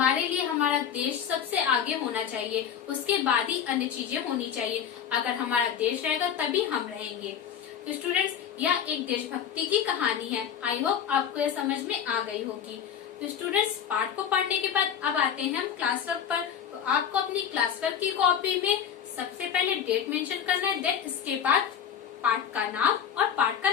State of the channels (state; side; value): quieter; right; 8.5 dB